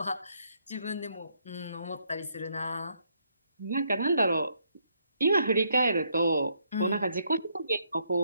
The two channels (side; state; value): both; inverted; correlation -0.73